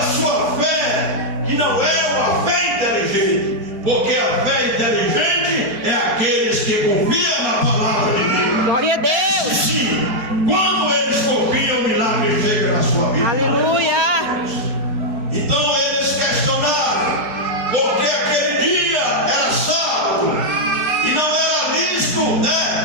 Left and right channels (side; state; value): left; late; 4.3 ms